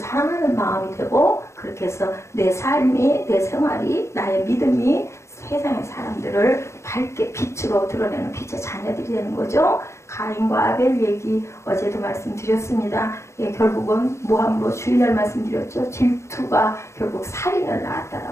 마음이 되고 그렇게 해서 내 삶이 내 생활이 나의 믿음이 세상의 사람들을 밝게 빛으로 드러내는 빛의 자녀들이 되는 거죠. 가인과 아벨 얘기 어제도 말씀드렸습니다. 예, 결국은 모함으로 주일날 말씀드렸죠. 질투가 결국 살인을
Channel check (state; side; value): late; right; 0.14 ms